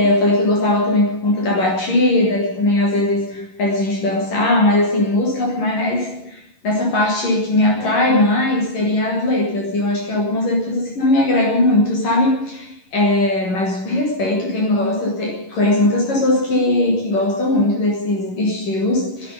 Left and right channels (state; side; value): late; right; 11 ms